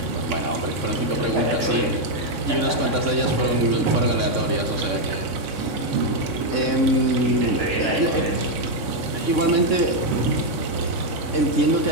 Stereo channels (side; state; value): left; late; 3.6 ms